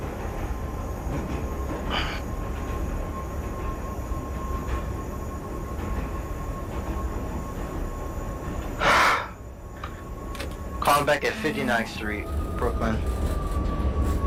Calling back at 59th Street, Brooklyn.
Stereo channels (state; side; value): identical; both; correlation 1.00